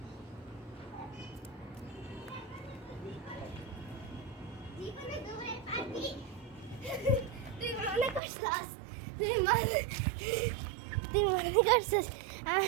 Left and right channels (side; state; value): left; drops out; at 8.2 s